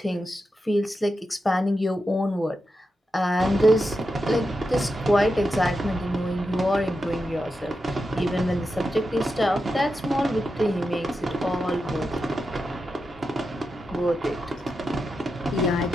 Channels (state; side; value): normal; both; correlation 0.88